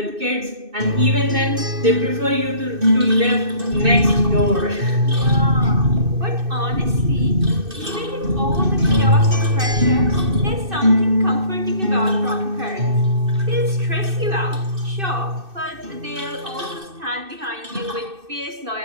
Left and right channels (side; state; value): left; late; 2.6 ms